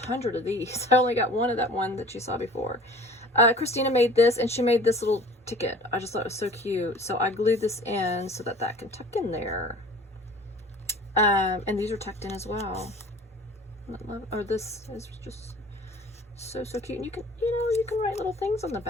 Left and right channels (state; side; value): normal; both; correlation 0.46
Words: of these. I only got one of that one that you saw before. Christina made this, and she made this little ticket. I just thought it was so cute. So I glued this in so that can tuck in there. And these are tucked in as well. Oh, this is just so cute. And you can, you can write little things on the